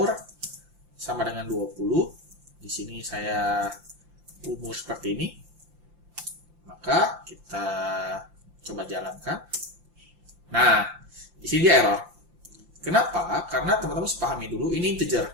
sama dengan 20, di sini saya umur seperti ini. Maka kita coba jalankan. Nah, di sini dia error. Kenapa? Karena teman-teman harus pahami dulu ini integer.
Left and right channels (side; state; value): left; late; 5.8 ms